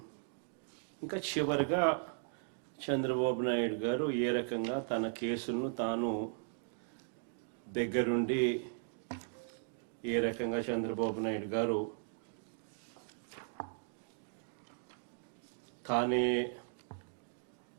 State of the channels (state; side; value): silent; left; digital silence